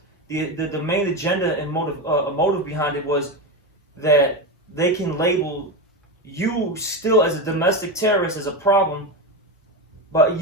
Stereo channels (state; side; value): normal; both; correlation 0.16